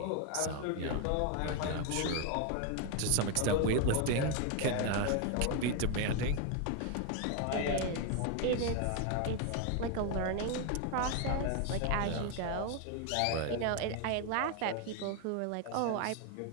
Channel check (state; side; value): different; both; correlation 0.01